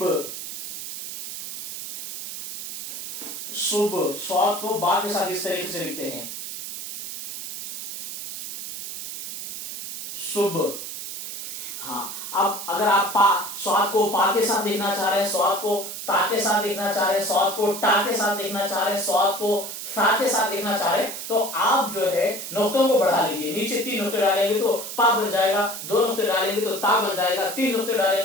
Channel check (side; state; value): right; noise; hiss, 8 dB below the sound